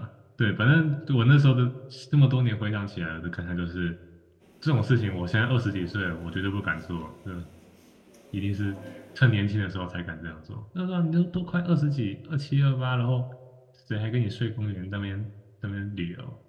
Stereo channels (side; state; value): both; identical; correlation 1.00